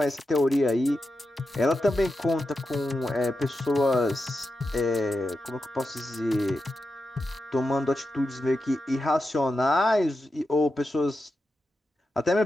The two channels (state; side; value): normal; both; correlation 0.89